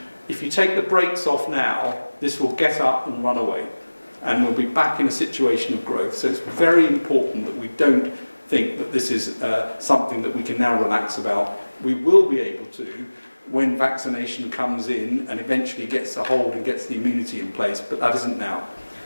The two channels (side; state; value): both; inverted; correlation -1.00